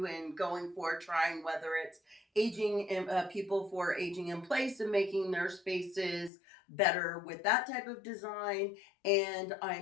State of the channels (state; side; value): drops out; right; at 6.3 s